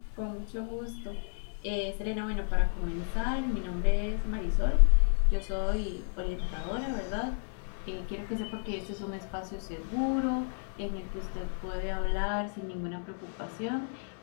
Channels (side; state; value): right; silent; 56 dB below the other